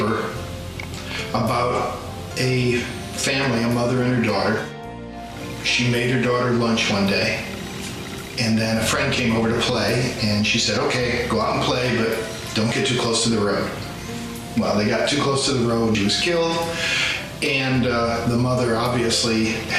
about a family, a mother and her daughter. She made her daughter lunch one day, and then a friend came over to play, and she said, okay, go out and play, but don't get too close to the road. Well, they got too close to the road, she was killed, and the mother obviously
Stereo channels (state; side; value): identical; both; correlation 1.00